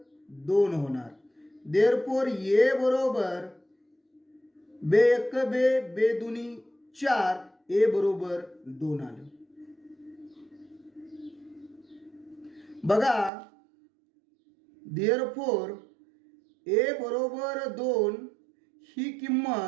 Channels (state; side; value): drops out; left; at 13.3 s